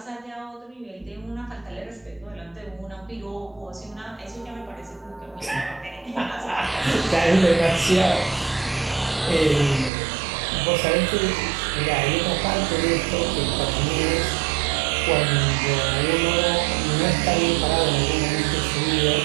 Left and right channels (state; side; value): drops out; left; at 9.9 s